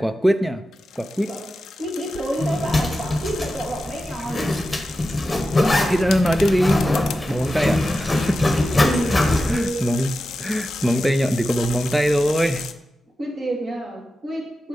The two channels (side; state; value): both; normal; correlation 0.92